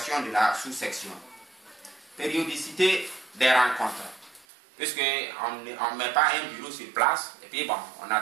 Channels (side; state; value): left; drops out; at 4.5 s